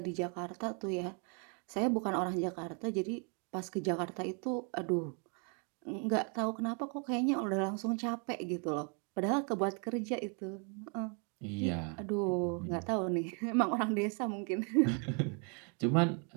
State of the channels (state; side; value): quieter; left; 37.4 dB